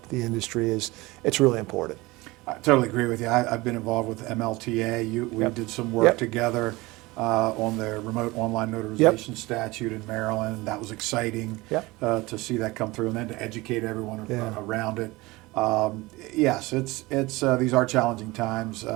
the industry it's really important. I totally agree with you. I've been involved with MLTA. We did some work together on the remote online notarization statute in Maryland. That was exciting to see that come through, and then to educate everyone around it. Yes, it's these are challenging times.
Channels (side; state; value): left; quieter; 21.6 dB